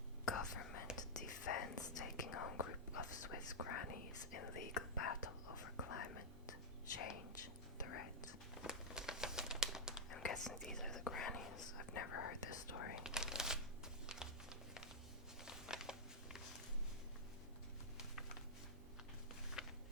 Government defends taking on group of Swiss grannies in legal battle over climate change threat. I'm guessing these are the grannies. I've never heard this story.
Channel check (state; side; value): normal; both; correlation -0.06